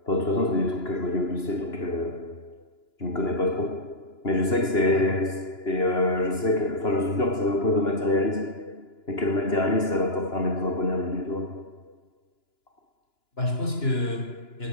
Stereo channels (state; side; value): late; right; 2.9 ms